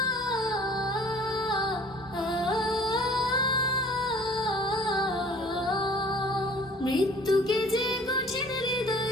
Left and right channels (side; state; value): both; normal; correlation 0.51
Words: মৃত্যুকে যে কঠিন